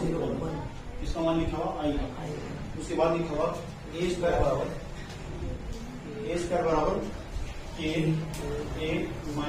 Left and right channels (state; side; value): identical; both; correlation 1.00